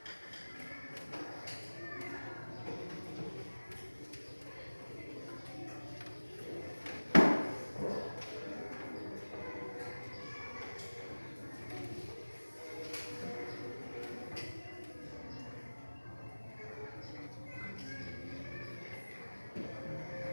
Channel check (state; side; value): inverted; both; correlation -1.00